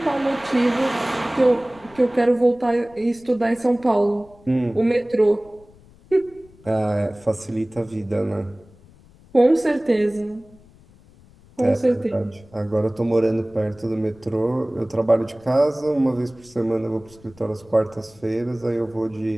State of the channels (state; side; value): noise; left; rumble, 26 dB below the sound